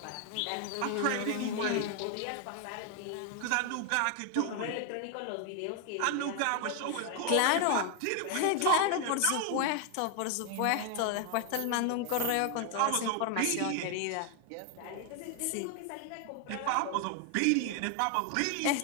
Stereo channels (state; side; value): different; both; correlation 0.01